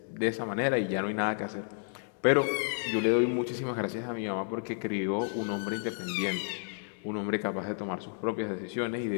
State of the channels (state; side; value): silent; right; digital silence